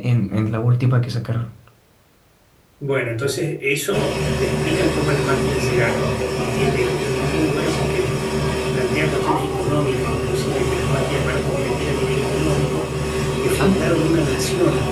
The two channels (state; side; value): identical; both; correlation 1.00